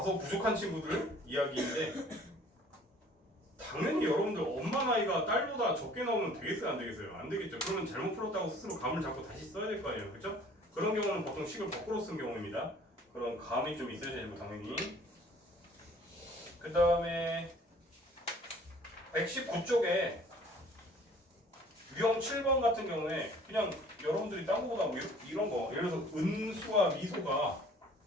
부족한 친구들 이야기인데 당연히 여러분들 엄마 나이가 딸보다 적게 나오면 되겠어요 안 되겠어요? 안 되겠죠. 그러면 잘못 풀었다고 스스로 감을 잡고 다시 써야 될 거 아니에요, 그렇죠? 그런 경우는 보통 식을 거꾸로 쓴 경우입니다. 그런 감이 좀 있어야 되고 당연히. 그 다음에 119쪽에 유형 7번 같은 경우에 그냥 여러분들이 딴 거보다 뭐 이런 거 예를 들어서 은수와 미소가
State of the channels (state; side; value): normal; both; correlation 0.53